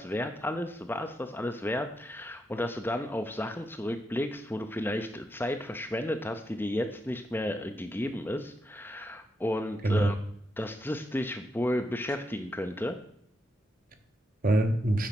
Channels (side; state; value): both; normal; correlation 0.83